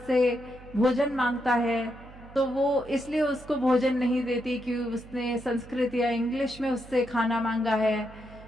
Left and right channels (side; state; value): right; noise; hum, 19 dB below the sound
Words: भोजन मांगता है तो वो इसलिए उसको भोजन नहीं देती कि उसने संस्कृत या इंग्लिश में उससे खाना मांगा है,